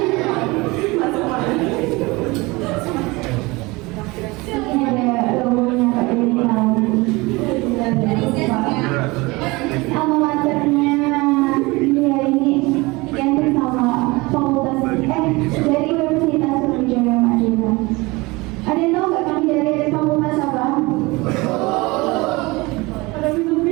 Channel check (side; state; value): left; quieter; 23.4 dB